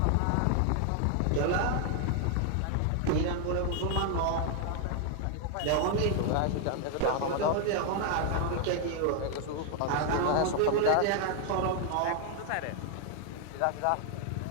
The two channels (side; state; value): both; different; correlation 0.00